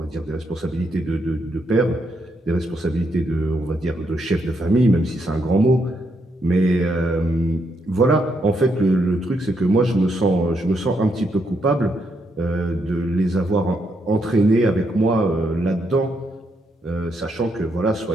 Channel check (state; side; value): normal; both; correlation 0.78